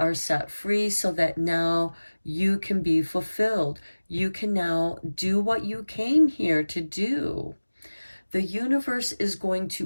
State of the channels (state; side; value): inverted; both; correlation -1.00